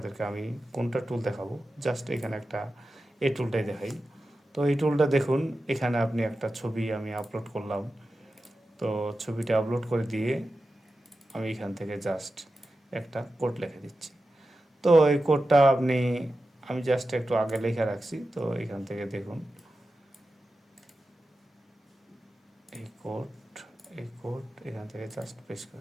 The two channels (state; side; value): normal; both; correlation 0.92